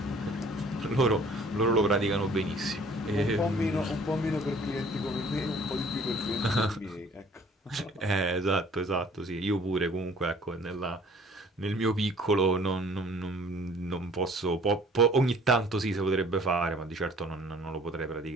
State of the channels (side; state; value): both; normal; correlation 0.54